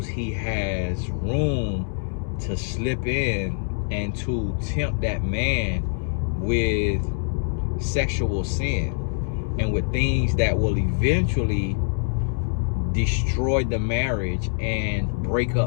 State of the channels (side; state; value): right; silent; digital silence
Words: he has room to slip in and to tempt that man with sexual sin and with things that will eventually destroy the marriage and break